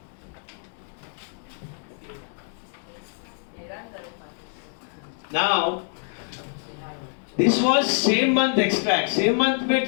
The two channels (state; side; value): silent; right; 61 dB below the other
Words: Now this was same month extract. Same month में